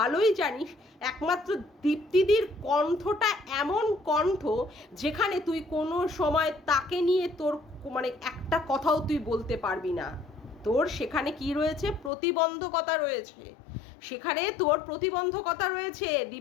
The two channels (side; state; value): right; drops out; at 12.1 s